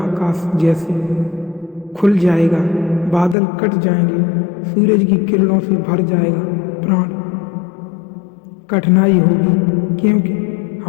जैसे खुल जाएगा, बादल कट जाएंगे, सूरज की किरणों से भर जाएगा प्राण। कठिनाई होगी, क्योंकि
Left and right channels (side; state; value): right; drops out; at 3.4 s